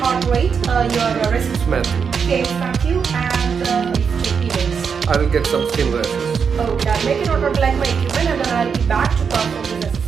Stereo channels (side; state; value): left; quieter; 6.3 dB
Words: rate, your resistance. Okay, thank you, and I will get some skin rashes. Okay, make a note of like my equipment and then I will be back to perform this